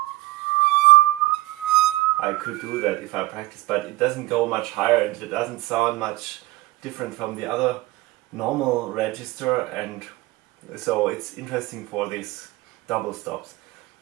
I could do that if I practice, but it doesn't go much higher and it doesn't sound much different from the other normal register, and so it's interesting for these double stops.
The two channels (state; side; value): quieter; left; 18.6 dB